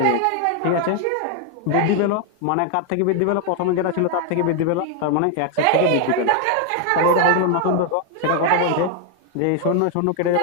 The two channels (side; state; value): both; different; correlation 0.00